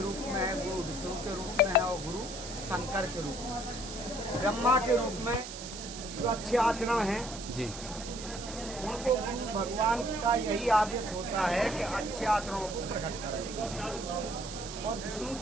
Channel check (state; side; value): noise; right; hiss, 10 dB below the sound